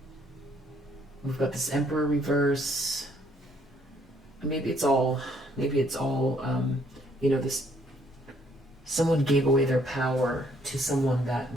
got this Emperor reverse. Maybe it's all, this, someone gave away their power to someone that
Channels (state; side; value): normal; both; correlation 0.66